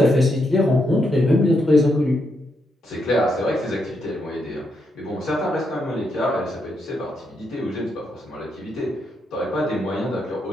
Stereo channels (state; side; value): normal; both; correlation 0.80